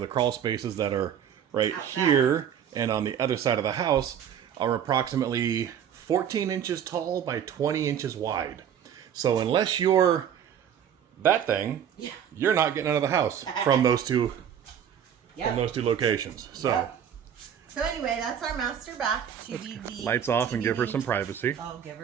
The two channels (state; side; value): quieter; left; 8.8 dB